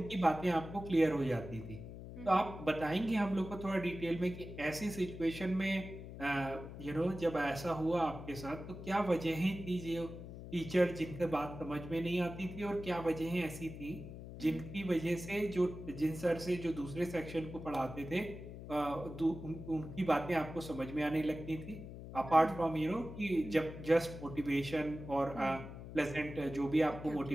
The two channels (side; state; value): left; noise; hum, 11 dB below the sound